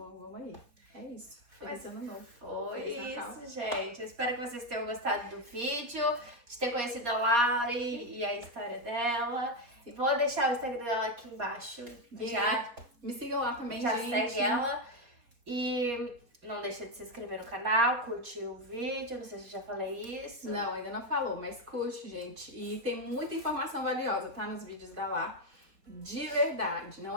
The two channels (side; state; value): left; late; 4.4 ms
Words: aí. É isso. Feliz Mas ano novo. Foi Feliz Natal. isso, gente. Eu espero que vocês tenham gostado do vídeo, de ter conhecido a Lari e a história dela. Vou deixar o Instagram dela aqui embaixo. Já, Me sigam lá também, já gente. segue ela. E não deixa de se inscrever no canal, curtir o vídeo. Não sei se eu já falei isso. Não, ainda não falou, mas curte, gente. E tem muita informação valiosa, tá? Nos vídeos da Lá. De verdade.